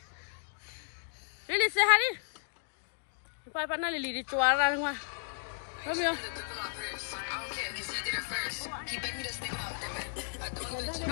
Lili sehari. Apa mana Lili di cuara rumah? Ramyo.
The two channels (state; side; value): silent; right; digital silence